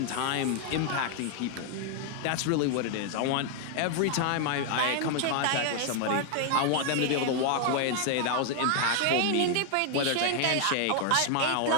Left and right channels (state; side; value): different; both; correlation 0.00